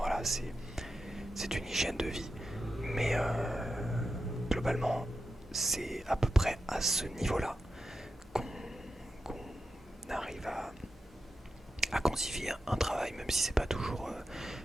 c'est une hygiène de vie, mais globalement, c'est à peu près à ce niveau-là qu'on arrive à quantifier un travail, même si c'est pas toujours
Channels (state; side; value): normal; both; correlation 0.90